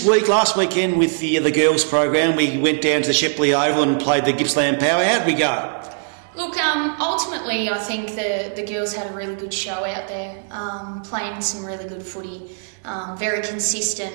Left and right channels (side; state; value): left; silent; digital silence